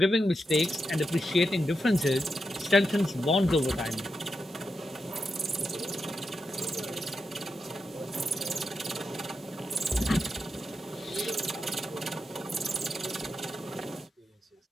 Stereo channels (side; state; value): both; normal; correlation 0.86